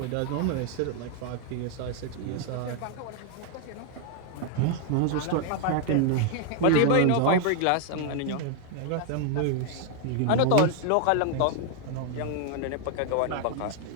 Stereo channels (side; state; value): both; different; correlation 0.00